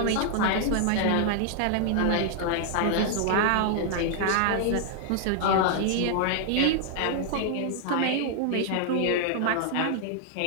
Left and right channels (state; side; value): different; both; correlation 0.00